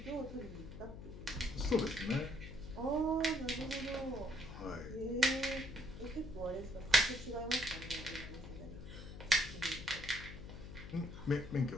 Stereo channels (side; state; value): left; noise; hum, 11 dB below the sound